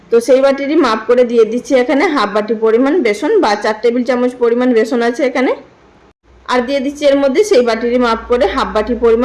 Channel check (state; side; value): identical; both; correlation 1.00